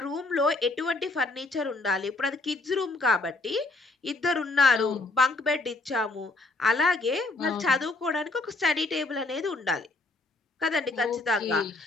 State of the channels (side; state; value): right; quieter; 3.2 dB